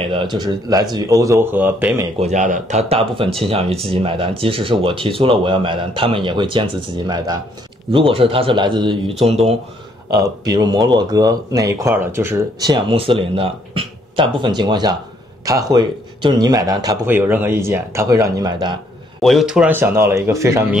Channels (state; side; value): normal; both; correlation 0.68